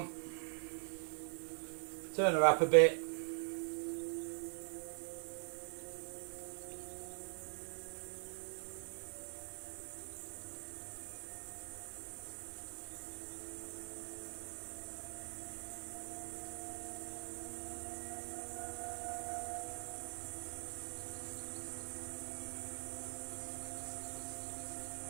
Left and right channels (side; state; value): left; silent; digital silence